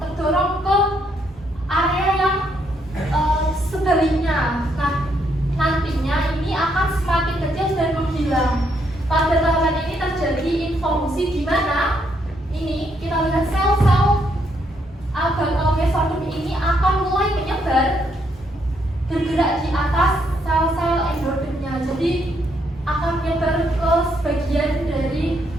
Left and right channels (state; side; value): normal; both; correlation 0.74